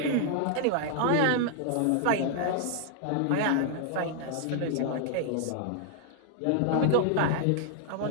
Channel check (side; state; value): both; different; correlation 0.00